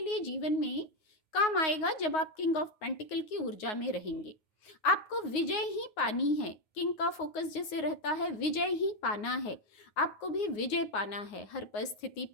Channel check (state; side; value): late; right; 9.5 ms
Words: लिए जीवन में काम आएगा जब आप किंग ऑफ पेंटिकल की ऊर्जा में रहेंगे। आपको विजय ही पानी है, किंग का फोकस जैसे रहता है विजय ही पाना है। आपको भी विजय पाना है, हर परिस्थिति